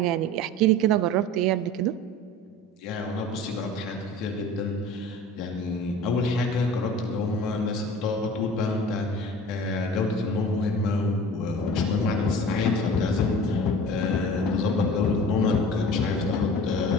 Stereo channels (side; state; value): both; normal; correlation 0.40